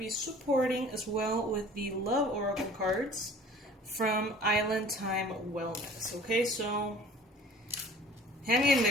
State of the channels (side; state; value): both; normal; correlation 0.47